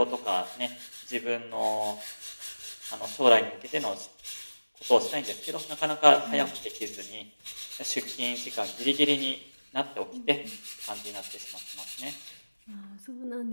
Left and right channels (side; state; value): both; inverted; correlation -1.00